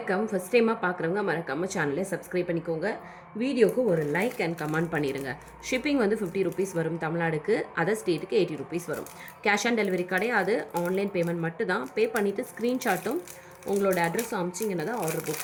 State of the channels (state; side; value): identical; both; correlation 1.00